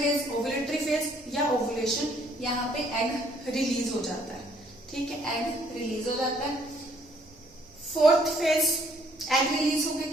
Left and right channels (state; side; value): noise; right; rumble, 27 dB below the sound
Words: ovulatory phase या ओव्यूलेशन, यहाँ पे एग रिलीज हो जाता है। ठीक है, एग रिलीज हो जाता है। फोर्थ फेज, एग रिलीज हो गया,